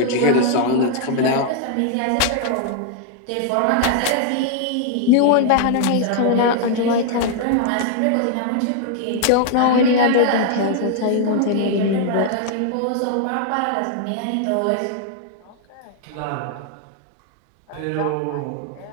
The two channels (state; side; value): different; both; correlation 0.00